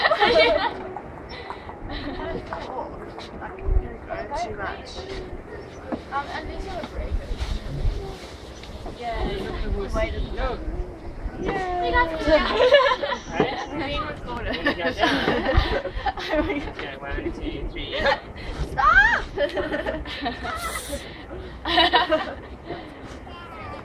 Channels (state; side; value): identical; both; correlation 1.00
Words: Too much. And these are breakers. Yeah, wait a minute. Yeah. You guys can go. Being recorded. Okay, 1, 2, 3. Stop!